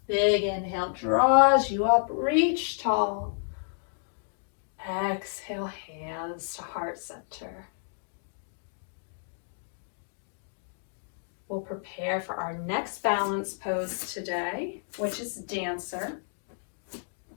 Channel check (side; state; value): right; silent; digital silence